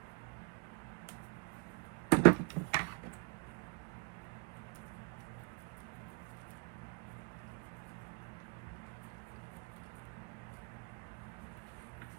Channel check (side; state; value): left; quieter; 29.8 dB